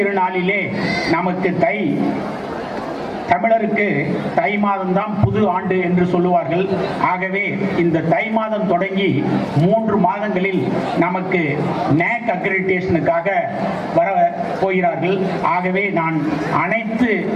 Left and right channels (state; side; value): identical; both; correlation 1.00